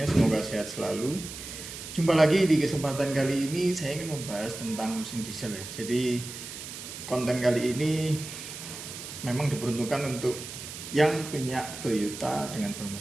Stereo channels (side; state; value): right; noise; hiss, 10 dB below the sound